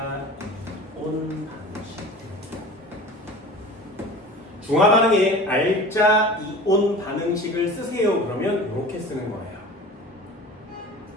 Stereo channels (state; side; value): normal; both; correlation 0.38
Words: 이온. 중화 반응에 알짜 이온 반응식을 쓰세요. 그러면 이렇게 쓰는 거예요.